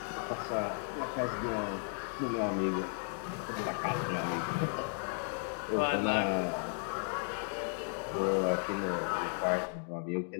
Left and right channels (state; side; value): silent; right; 55 dB below the other